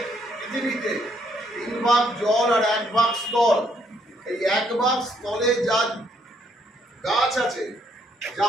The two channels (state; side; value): normal; both; correlation 0.71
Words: পৃথিবীতে ভাগ জল আর 1 ভাগ স্থল। এই 1 ভাগ স্থলে যা গাছ আছে, যা